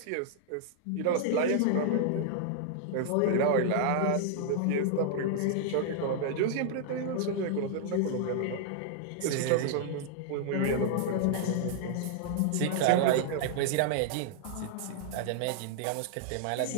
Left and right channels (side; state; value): both; different; correlation -0.01